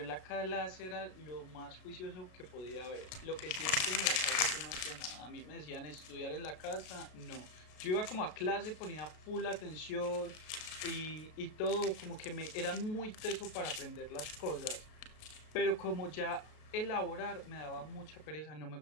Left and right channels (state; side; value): late; right; 32 ms